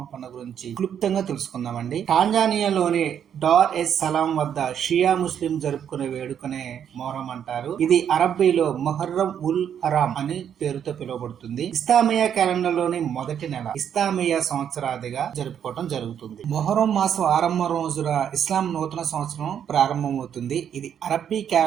పండుగ గురించి క్లుప్తంగా తెలుసుకుందామండి. టాంజానియాలోని డార్ ఎస్ సలాం వద్ద షియా ముస్లిం జరుపుకునే వేడుకనే మొహరం అంటారు. ఇది అరబ్బీలో మొహర్రం ఉల్ హరాం అని పేరుతో పిలువబడుతుంది. ఇస్లామియా క్యాలెండర్ లోని మొదటి నెల ఇస్లామియా సంవత్సరాదిగా జరుపుకోవడం జరుగుతుంది. మొహరం మాసం ఆరంభం రోజున ఇస్లాం నూతన సంవత్సరం ప్రారంభమవుతుంది. ఇది అరబ్బీ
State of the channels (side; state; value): left; quieter; 8.8 dB